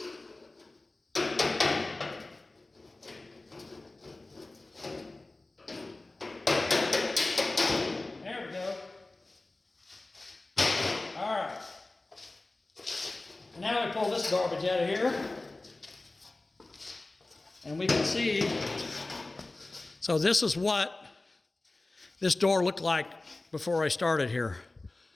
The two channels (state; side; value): quieter; right; 3.0 dB